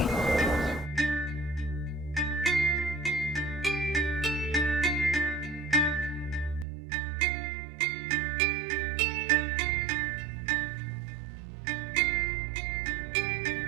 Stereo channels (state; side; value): drops out; left; at 6.7 s